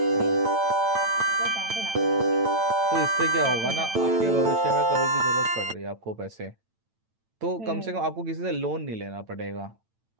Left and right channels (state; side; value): late; left; 8.9 ms